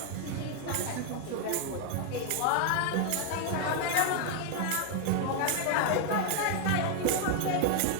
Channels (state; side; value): different; both; correlation 0.00